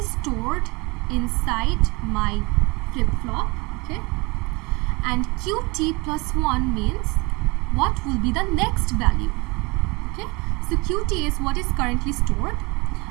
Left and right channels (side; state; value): left; quieter; 26.2 dB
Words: stored inside my flip-flop, okay, and QT plus 1 means what will be the next value. Okay, so QT is what is currently stored,